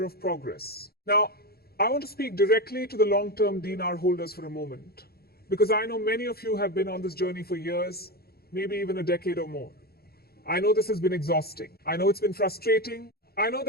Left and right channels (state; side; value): late; right; 0.45 ms